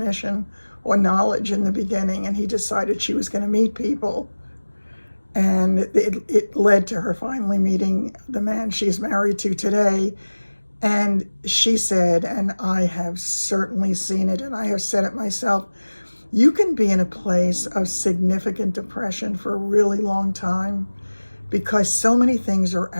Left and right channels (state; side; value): inverted; both; correlation -1.00